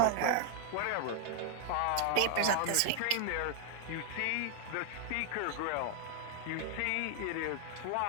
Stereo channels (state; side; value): different; both; correlation 0.00